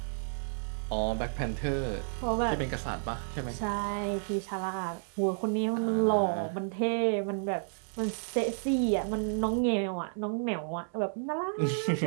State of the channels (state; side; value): silent; left; 57 dB below the other